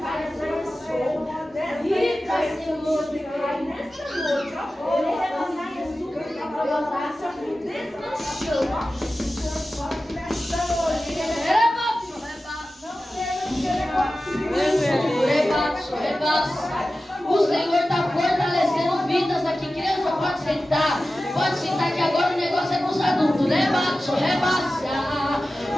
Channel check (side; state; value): both; normal; correlation 0.95